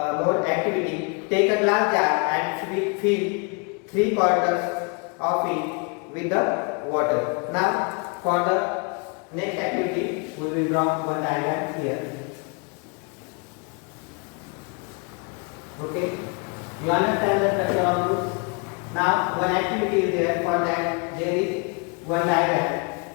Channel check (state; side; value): quieter; right; 33.5 dB